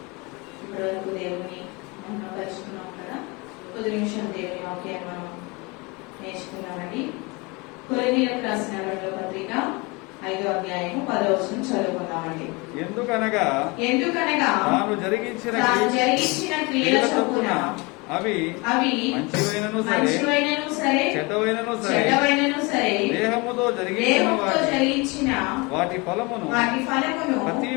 ఇప్పటివరకు దేవుని మనం కలుసుకున్నాం కదా. కొద్ది నిమిషం దేవుని వాక్యాన్ని మనం నేర్చుకున్నామండి. కొరింథీయులకు రాసిన రెండవ పత్రిక 5వ అధ్యాయము 10వ వచనం చదువుకుందామండి. ఎందుకనగా తాను జరిగించిన క్రియల చొప్పున అవి మంచివైనను సరే చెడ్డవైనను సరే దేహముతో జరిగించిన వాటి ఫలమును ప్రతి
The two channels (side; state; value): right; quieter; 26.6 dB